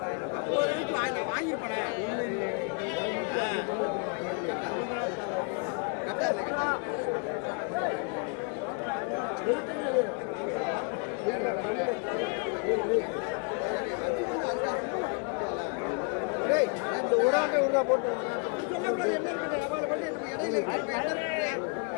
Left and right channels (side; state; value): right; quieter; 36.4 dB